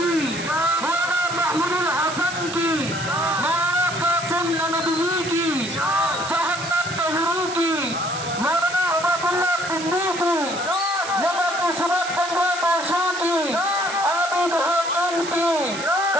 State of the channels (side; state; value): right; noise; hiss, 9 dB below the sound